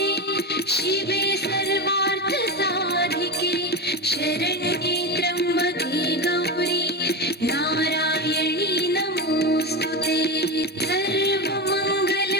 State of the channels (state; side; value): normal; both; correlation 0.17